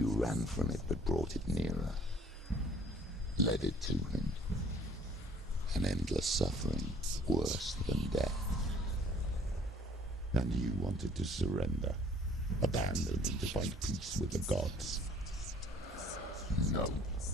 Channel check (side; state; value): both; normal; correlation 0.56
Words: ran from it but brought it nearer. Led it to him. An endless suffering, worse than death. And you wanted to surrender, abandon and to find peace with the gods. No.